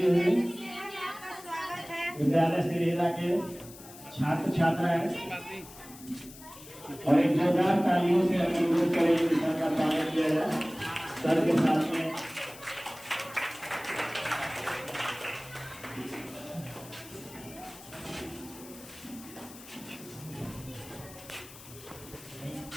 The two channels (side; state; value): left; noise; hiss, 18 dB below the sound